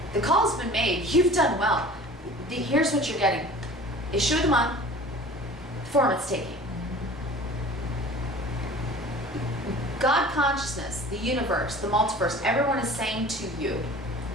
The call's been made. You've done well. Here's what you're getting. Issue of the month, form it's taking. God consciousness, the universe, the multiverse, everyone is saying to you,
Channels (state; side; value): normal; both; correlation 0.43